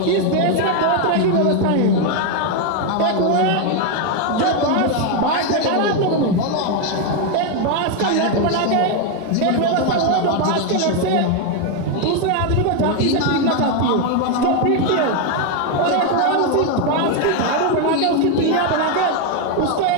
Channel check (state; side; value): different; both; correlation 0.01